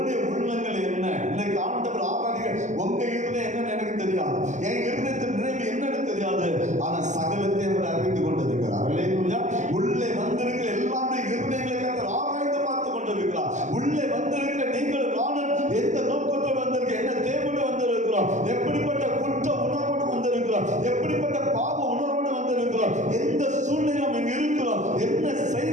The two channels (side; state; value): left; late; 0.35 ms